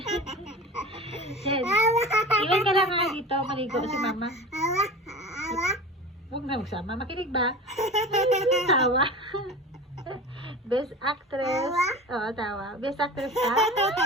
Chen. Ilan ka lang nga dito. Maligo si Mama. Huwag na magsama. Makinig ba? Tawa. Best actress. Oo, tawa. Best actress ka?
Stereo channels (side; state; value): both; normal; correlation 0.34